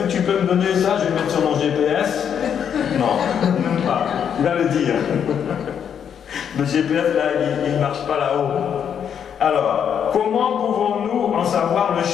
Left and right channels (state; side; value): quieter; right; 8.2 dB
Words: tu peux me donner ça? Je vais mettre sur mon GPS. Non, même pas. Il va le dire. Le GPS, là, il ne marche pas là-haut. Alors, comment pouvons-nous en savoir le